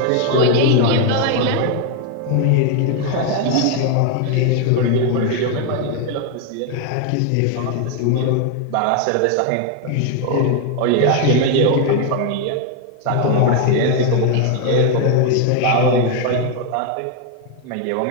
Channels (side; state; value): both; different; correlation 0.01